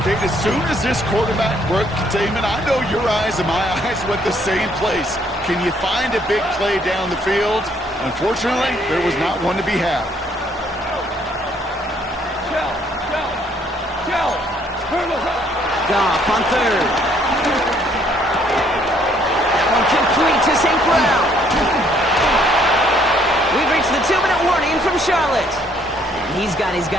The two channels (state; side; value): normal; both; correlation 0.66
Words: Okay, as soon as this quarterback broke containment, I know your eyes and my eyes went the same place. Can you find a big play down the field? Unfortunately, there was not one to be had. Goff on 3rd. That one complete to St. Brown. We've reached the 2-minute warning from Charlotte. And he's got his